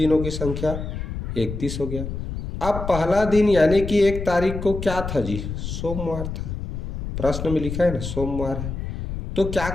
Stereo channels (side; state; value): left; noise; rumble, 6 dB below the sound